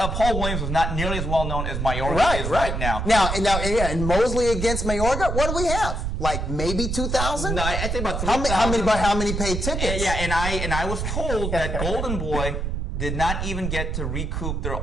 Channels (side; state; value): right; noise; rumble, 2 dB below the sound